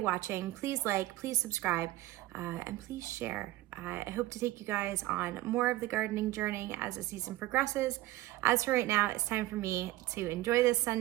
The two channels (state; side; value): quieter; left; 16.8 dB